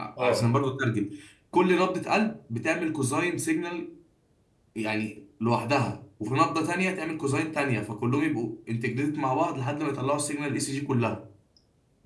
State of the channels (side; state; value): both; identical; correlation 1.00